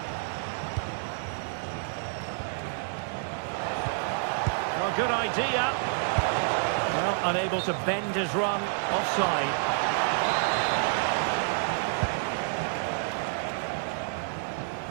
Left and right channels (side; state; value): left; silent; digital silence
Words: Well, good idea. Well, unable to bend his run, offside.